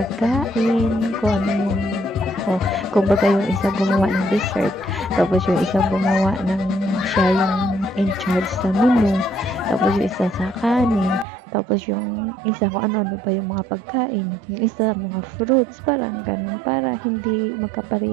kung ano yung kung baga yung isa gumawa ng dessert, tapos yung isa gumawa ng siya yung in charge sa menu, tapos yung isa sa kanin, tapos yung isa kung ano ba yung mga pagkain, yung isa mga fruits, parang ganun, para hindi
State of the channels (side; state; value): left; drops out; at 11.2 s